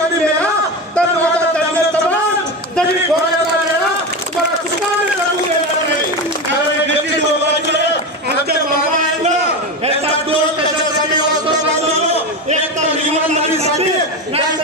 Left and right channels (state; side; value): normal; both; correlation 0.20